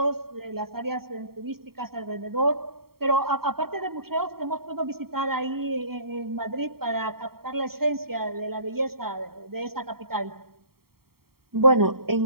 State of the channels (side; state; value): left; late; 0.94 ms